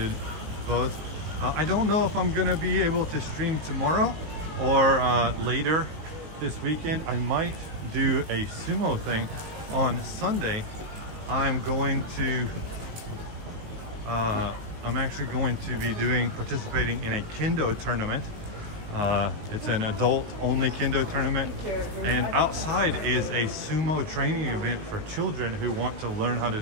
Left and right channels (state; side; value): late; left; 19 ms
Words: both. I don't know if I'm gonna be able to stream tomorrow or later this weekend. I might do a sumo thing on Sunday. I'm actually going to be participating in a kendo tournament. It's an adult only kendo tournament, and outside is a sumo training event for children who want to learn how to